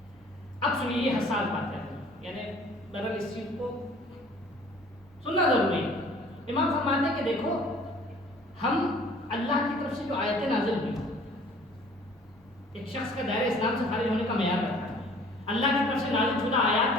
اب سنیے یہ حساس بات ہے, یعنی بہرحال اس چیز کو سننا ضروری ہے. امام فرماتے ہیں کہ دیکھو ہم اللہ کی طرف سے جو آیتیں نازل ہوئی ایک شخص کا دائرہ اسلام سے خارج ہونے کا معیار رکھتا ہے. اللہ کی طرف سے نازل شدہ آیات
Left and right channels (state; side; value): normal; both; correlation 0.52